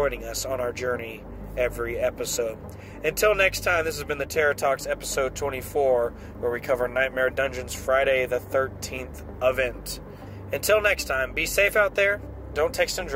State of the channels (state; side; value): identical; both; correlation 1.00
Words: us on our journey every episode. Until next time, this has been the Terror Talks episode 24, where we cover Nightmare Dungeon's Friday the 13th event. Until next time, be safe out there, don't text and